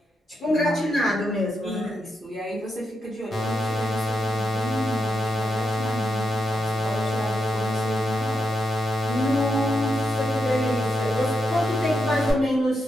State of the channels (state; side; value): normal; both; correlation 0.84